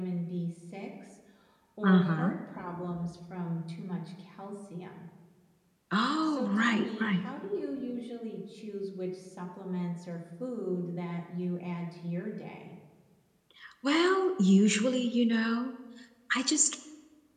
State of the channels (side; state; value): both; identical; correlation 1.00